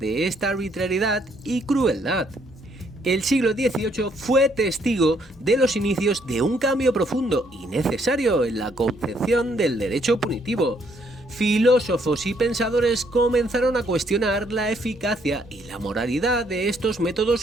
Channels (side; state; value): both; normal; correlation 0.69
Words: esta arbitrariedad y crueldad. El siglo XVIII fue testigo de los inicios de un cambio profundo y necesario en la concepción del derecho punitivo. Filósofos y pensadores comenzaron a cuestionar la eficacia y la moralidad de estos